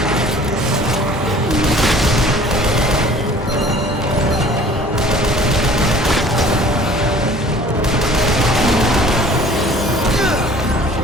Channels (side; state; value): both; normal; correlation 0.50